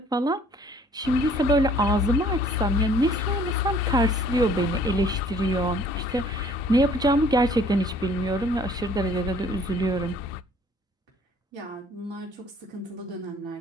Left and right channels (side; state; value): both; normal; correlation 0.56